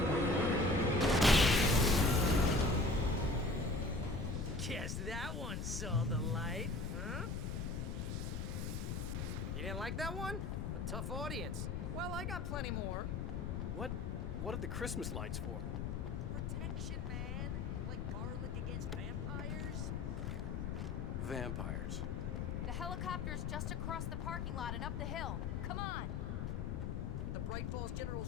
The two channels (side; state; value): left; noise; rumble, 2 dB below the sound